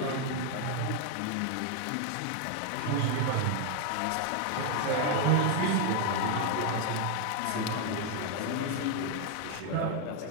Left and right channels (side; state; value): both; different; correlation 0.00